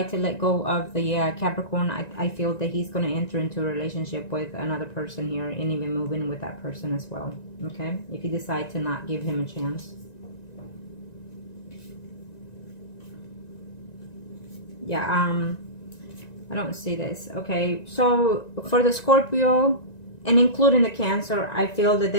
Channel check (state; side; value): late; right; 1.9 ms